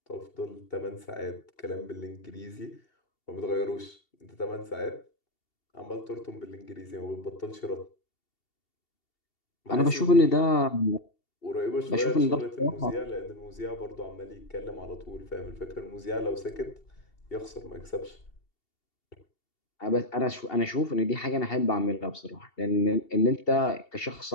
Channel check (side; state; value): right; late; 2.7 ms